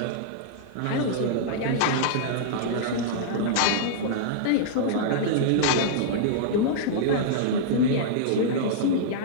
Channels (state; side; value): different; both; correlation -0.02